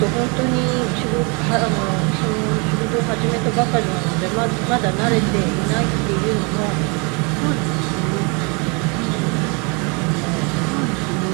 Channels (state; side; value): quieter; left; 32.1 dB